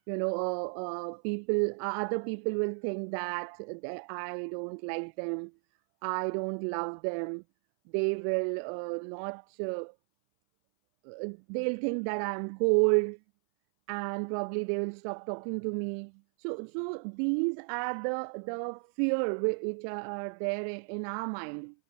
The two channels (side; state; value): left; silent; 56 dB below the other